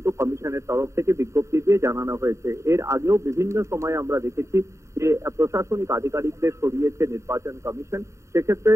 কমিশনের তরফ থেকে বিজ্ঞপ্তি দিয়ে জানানো হয়েছে। এর আগেও বিভিন্ন সময় আমরা দেখেছি যে প্রশাসনিক আধিকারিকদের সরিয়েছে নির্বাচন কমিশন। সেক্ষেত্রে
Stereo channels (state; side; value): late; left; 0.14 ms